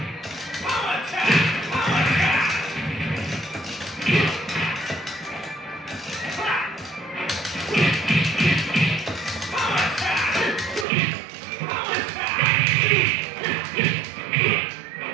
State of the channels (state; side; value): drops out; left; at 10.9 s